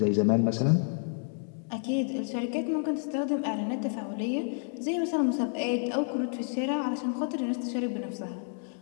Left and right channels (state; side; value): silent; right; 56 dB below the other